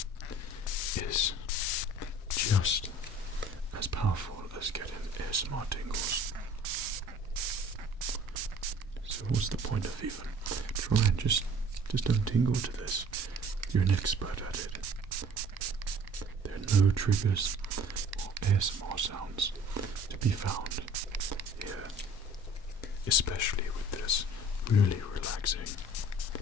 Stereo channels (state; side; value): normal; both; correlation 0.50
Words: is just as powerful as getting ASMR tingles. So what's the point of even trying? Just don't tingle to this. You're an expert at it. There are no triggers or ASMR sounds to be found here, especially with this really relaxing